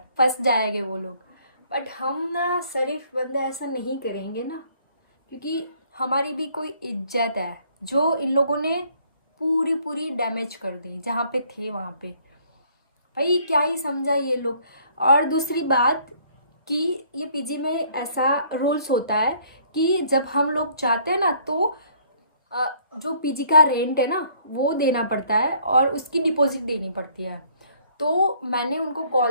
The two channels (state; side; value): inverted; both; correlation -0.62